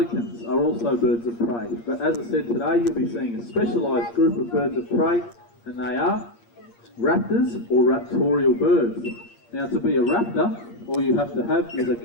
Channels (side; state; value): right; late; 8.6 ms